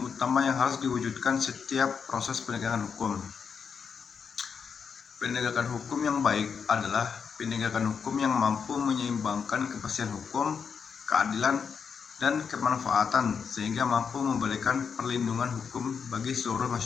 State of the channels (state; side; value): quieter; right; 6.3 dB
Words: utama yang harus diwujudkan setiap proses penegakan hukum. Penegakan hukum yang baik adalah penegakan hukum yang mampu menyeimbangkan kepastian hukum, keadilan, dan kemanfaatan sehingga mampu memberikan perlindungan hukum bagi seluruh